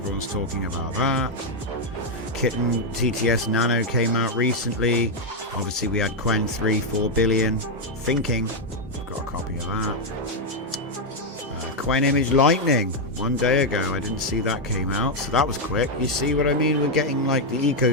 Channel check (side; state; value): both; normal; correlation 0.01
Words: talking about that. Kitten TTS Nano came out recently. Obviously, we had Quen 3 4 billion. Thinking. I've got a copy of that. Quen Image Lightning 1 day ago. I didn't see that came out, so that was quick. You see what I mean? We're getting like the